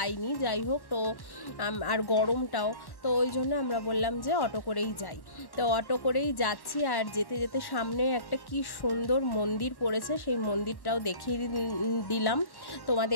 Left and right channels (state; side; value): late; right; 1.1 ms